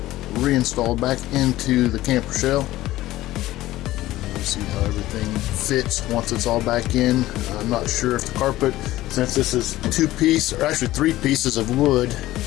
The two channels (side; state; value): right; quieter; 16.1 dB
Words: reinstalled back into the camper shell. We'll see how everything fits once it's all back in. I'm not sure if the carpet, since this is three pieces of wood,